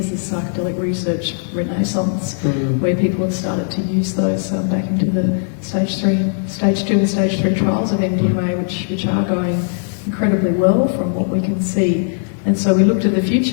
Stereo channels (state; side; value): silent; right; digital silence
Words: this psychedelic research renaissance, where people have started to use those back into the stage 2 and stage 3 trials of MDMA, which are going incredibly well from what we can see. And so we look to the